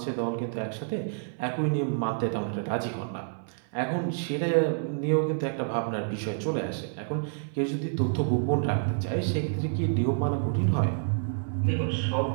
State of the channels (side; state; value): left; silent; 59 dB below the other